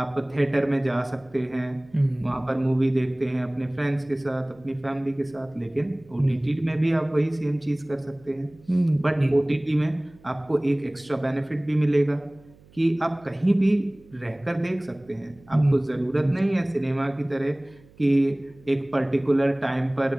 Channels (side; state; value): right; noise; hum, 27 dB below the sound